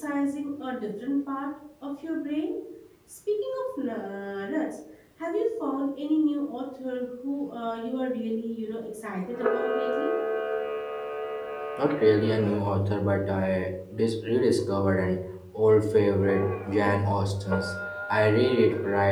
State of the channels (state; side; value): identical; both; correlation 1.00